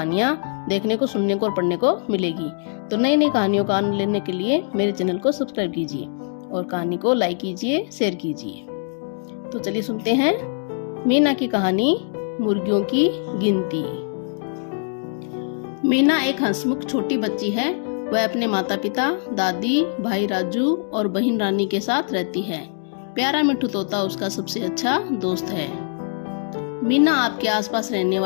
देखने को, सुनने को और पढ़ने को मिलेगी। तो नई नई कहानियों का आनंद लेने के लिए मेरे चैनल को सब्सक्राइब कीजिए और कहानी को लाइक कीजिए, शेयर कीजिए। तो चलिए सुनते हैं मीना की कहानी मुर्गियों की गिनती। मीना एक हंसमुख छोटी बच्ची है। वह अपने माता पिता, दादी, भाई राजू और बहन रानी के साथ रहती है। प्यारा मिट्ठू तोता उसका सबसे अच्छा दोस्त है। मीना आपके आसपास रहने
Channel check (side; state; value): right; silent; digital silence